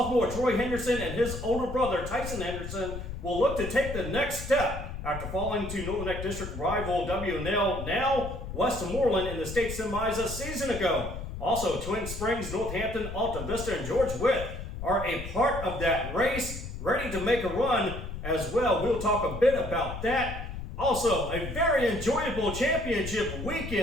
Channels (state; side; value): noise; left; rumble, 8 dB below the sound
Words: Troy Henderson and his older brother Tyson Henderson, will look to take the next step after falling to Northern Neck District rival WNL, now Westmoreland, in the state semis a season ago. Also, Twin Springs, Northampton, Alta Vista, and George Witt are a part of that race, ready to make a run as well. We'll talk a bit about that. Also, a very enjoyable championship